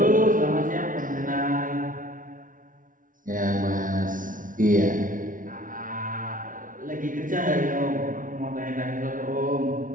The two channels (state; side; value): late; left; 0.38 ms